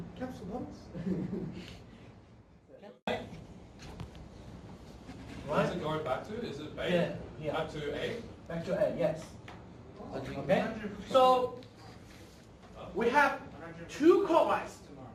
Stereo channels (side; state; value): both; identical; correlation 1.00